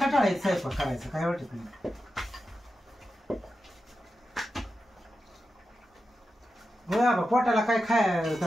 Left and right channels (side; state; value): both; normal; correlation 0.90